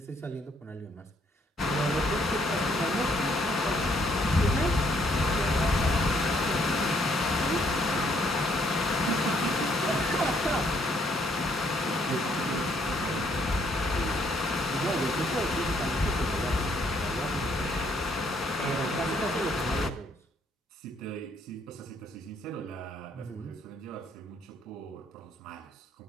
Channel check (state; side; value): normal; both; correlation 0.69